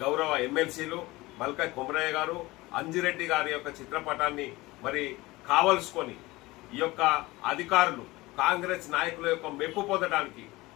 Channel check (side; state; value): right; quieter; 20.4 dB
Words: గౌరవ ఎమ్మెల్సీలు మల్క కుమరయ్య గారు, అంజిరెడ్డి గారి యొక్క చిత్రపటాన్ని మరి కావలసుకొని ఈ యొక్క అధికారులు కాంగ్రెస్ నాయకుల యొక్క మెప్పు పొందడానికి,